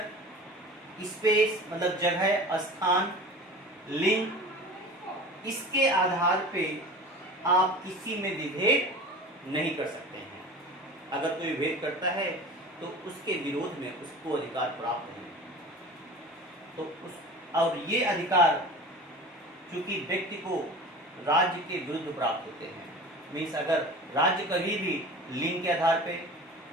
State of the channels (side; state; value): both; normal; correlation 0.37